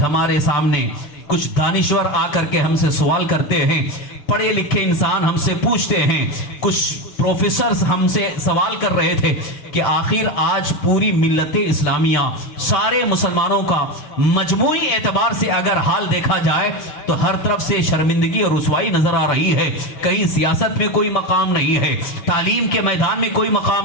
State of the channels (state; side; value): late; right; 6.9 ms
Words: ہمارے سامنے کچھ دانشور آ کر کے ہم سے سوال کرتے ہیں، پڑھے لکھے انسان ہم سے پوچھتے ہیں، کچھ پروفیسرز ہم سے سوال کر رہے تھے کہ آخر آج پوری ملت اسلامیہ، سارے مسلمانوں کا مجموعی اعتبار سے اگر حال دیکھا جائے تو ہر طرف سے شرمندگی اور رسوائی نظر آ رہی ہے. کہیں سیاست میں کوئی مقام نہیں ہے، تعلیم کے میدان میں کوئی